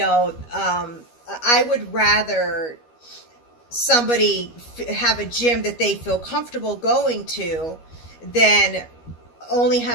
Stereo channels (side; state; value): right; late; 13 ms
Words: I would rather somebody have a gym that they feel comfortable going to than only